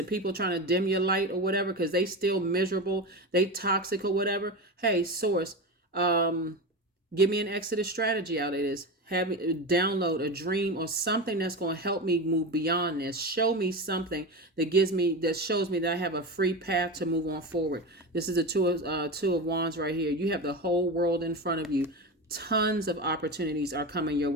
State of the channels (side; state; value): both; normal; correlation 0.22